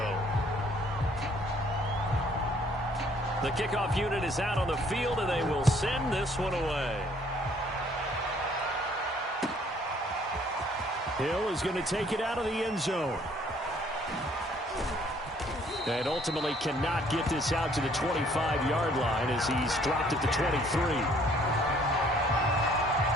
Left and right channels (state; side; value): normal; both; correlation 0.61